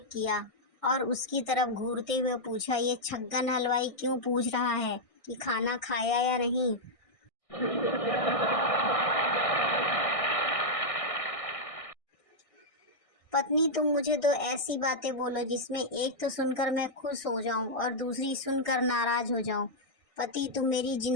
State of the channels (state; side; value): late; right; 1.6 ms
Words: किया और उसकी तरफ घूरते हुए पूछा, ये छग्गन हलवाई क्यों पूछ रहा है कि खाना खाया या नहीं। पत्नी, तुम मुझे दो ऐसी बातें बोलो जिसमें एक तो सुनकर मैं खुश हो जाऊं और दूसरी सुनकर नाराज हो जाऊं। पति, तुम मेरी